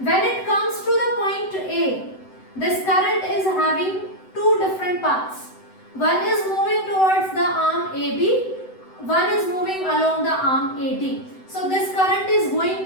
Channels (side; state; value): right; late; 7.9 ms